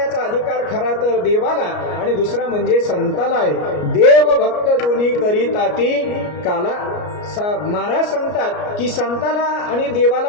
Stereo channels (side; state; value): right; late; 33 ms